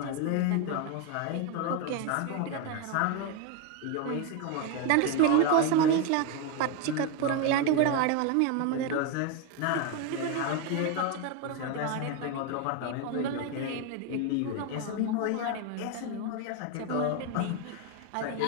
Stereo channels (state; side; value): different; both; correlation 0.02